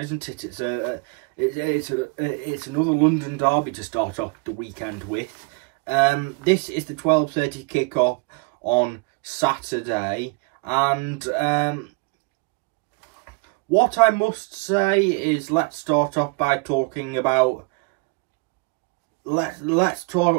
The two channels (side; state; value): left; quieter; 30.8 dB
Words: it? It's another London derby to start off the weekend with. This is the 12:30 kickoff on Saturday, and what I must say is, let's start off by talking about let's